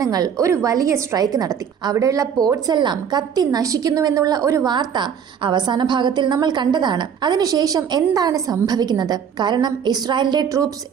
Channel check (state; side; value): quieter; left; 7.7 dB